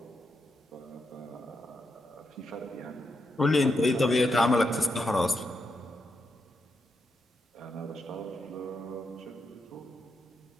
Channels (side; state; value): both; normal; correlation 0.84